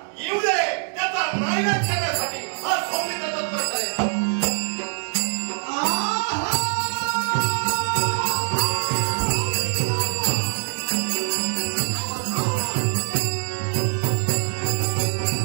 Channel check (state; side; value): silent; left; 57 dB below the other